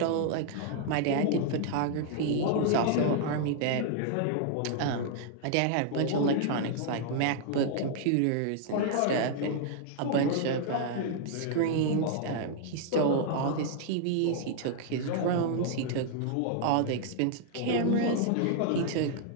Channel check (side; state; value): both; different; correlation -0.01